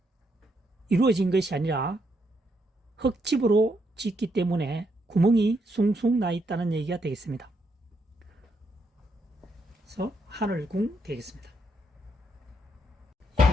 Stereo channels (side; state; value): both; normal; correlation 0.77